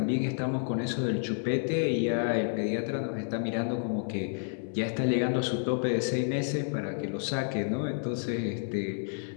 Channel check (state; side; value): silent; right; 58 dB below the other